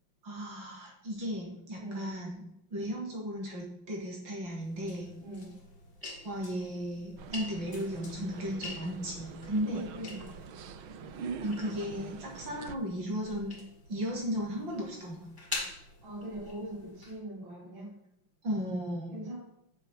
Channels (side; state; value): left; late; 5.7 ms